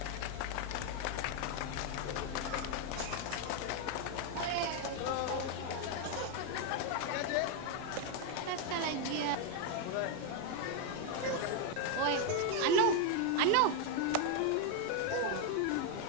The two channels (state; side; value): different; both; correlation 0.01